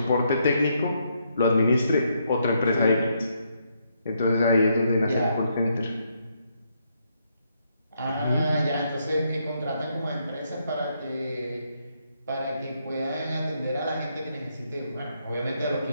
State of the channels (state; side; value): inverted; both; correlation -0.76